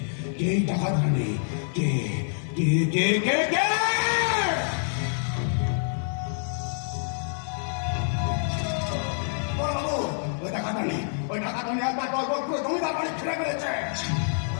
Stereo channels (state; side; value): silent; right; 58 dB below the other